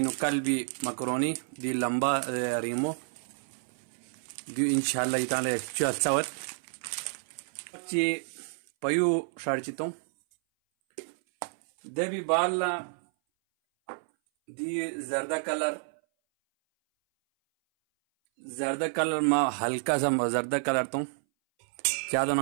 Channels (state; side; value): silent; left; 58 dB below the other